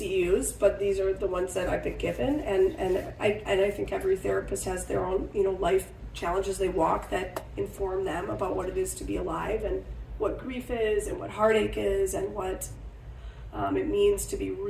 but these are the ones that I've been given, and I think every therapist has their own, you know, life challenges they walk that inform them about what it is to be alive, and what grief is, and what heartache is, and what it means to be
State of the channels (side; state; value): both; identical; correlation 1.00